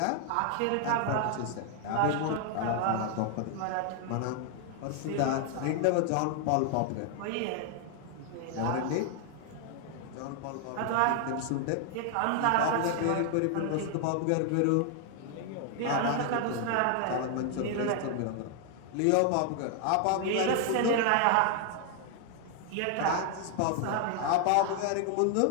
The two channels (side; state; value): both; different; correlation 0.00